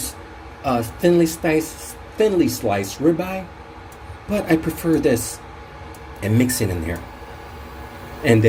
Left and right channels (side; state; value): both; identical; correlation 1.00